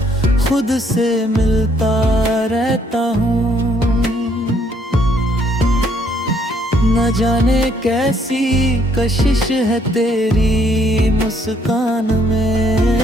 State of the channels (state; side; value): normal; both; correlation 0.67